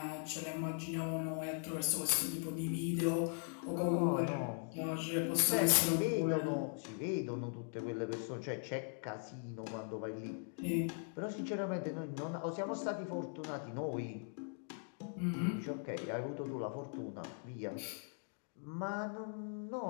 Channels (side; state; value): right; silent; 51 dB below the other